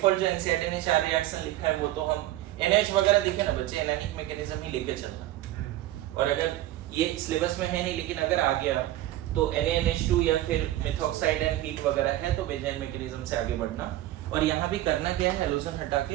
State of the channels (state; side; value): quieter; left; 15.0 dB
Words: जो एनसीईआरटी ने 4 रिएक्शन लिखा है वो तो हम NH वगैरह दिखे ना बच्चे, एनायनिक मैकेनिज्म ही लेके चलना। और अगर ये सिलेबस में है नहीं, लेकिन अगर आ गया तो NaNH2 या फिर मेथॉक्साइड एंड हीट वगैरह है तो बेंजाइन मैकेनिज्म से आगे बढ़ना। और यहाँ भी करना क्या है, हेलोजन हटा